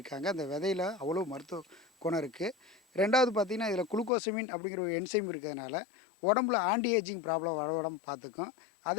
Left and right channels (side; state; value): right; drops out; at 4.1 s